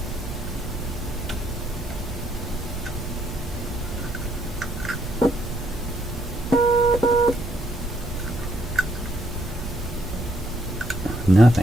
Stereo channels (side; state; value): both; normal; correlation 0.71